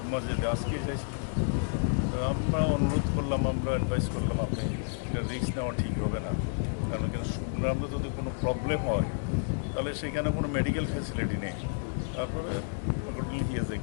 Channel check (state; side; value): silent; right; digital silence